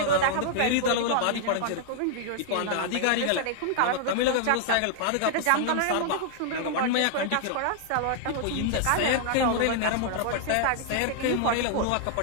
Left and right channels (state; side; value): different; both; correlation -0.01